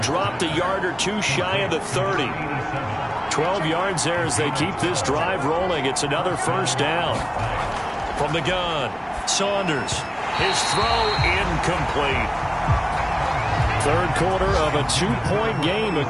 a yard or 2 shy of the 30. 12 yards there as they keep this drive rolling. It's another 1st down. From the gun, Saunders. His throw incomplete. Third quarter of a 2-point game. A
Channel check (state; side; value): identical; both; correlation 1.00